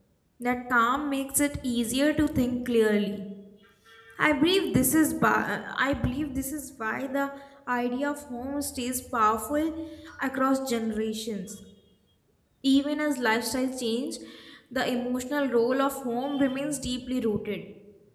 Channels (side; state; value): both; identical; correlation 1.00